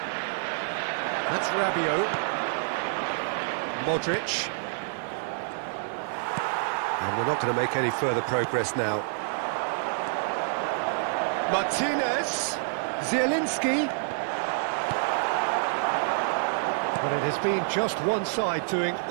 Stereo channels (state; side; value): silent; left; digital silence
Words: that's Rabiot, Modric, and we're not going to make any further progress now. Martinez, Zielinski. But it has been just one side doing